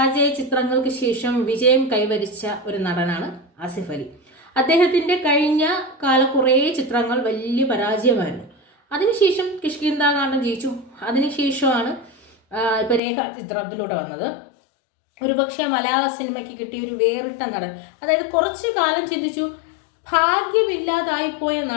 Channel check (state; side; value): drops out; right; at 13.0 s